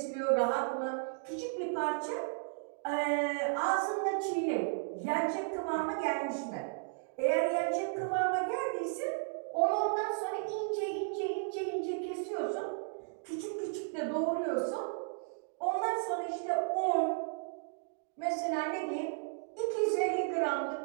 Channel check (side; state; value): left; silent; digital silence